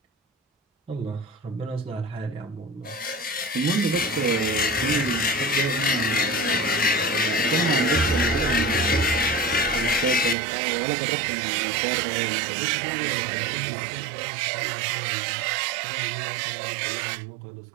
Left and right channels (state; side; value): drops out; left; at 10.4 s